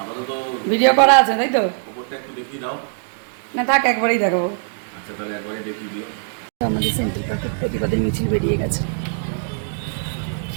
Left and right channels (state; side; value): silent; left; digital silence